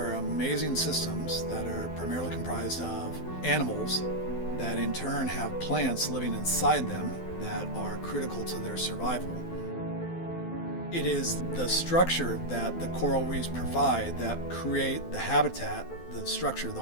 amazing systems that are primarily comprised of animals that in turn have plants living inside them that are critical to their survival. It is the structure that the coral reefs provide that create the habitat, the structure, the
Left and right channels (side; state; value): right; late; 12 ms